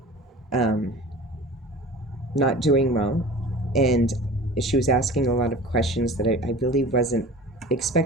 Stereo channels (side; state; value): both; normal; correlation 0.39